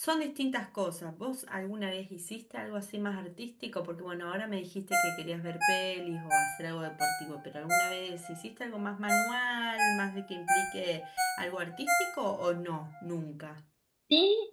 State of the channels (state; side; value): identical; both; correlation 1.00